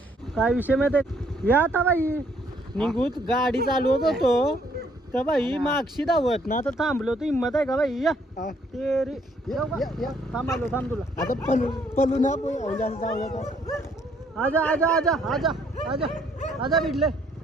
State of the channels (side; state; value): both; normal; correlation 0.66